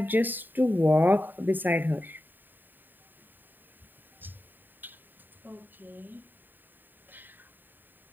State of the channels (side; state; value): left; late; 0.091 ms